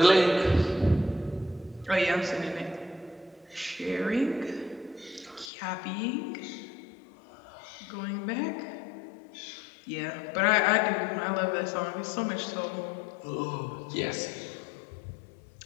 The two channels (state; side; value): drops out; right; at 5.5 s